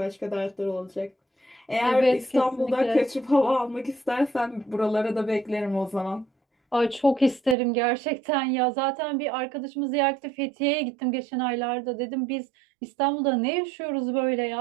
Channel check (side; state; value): left; drops out; at 7.6 s